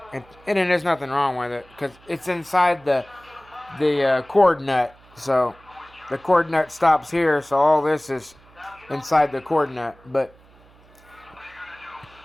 and there's nothing wrong with it because it's inside the cord nut. So the cord nut stops here, so all this is inside the cord nut. But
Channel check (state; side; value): noise; right; hum, 27 dB below the sound